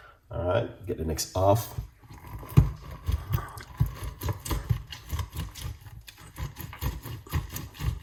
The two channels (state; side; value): identical; both; correlation 1.00